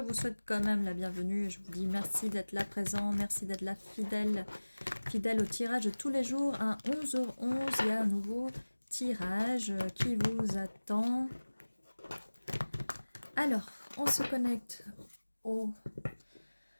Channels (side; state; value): both; inverted; correlation -1.00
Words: souhaite quand même la bienvenue. Je vous dis merci d'être là présent, merci d'être là fidèle au tirage de tous les jours. À 11h11, il y a un nouveau tirage qui vous attend. Alors, on se connecte aux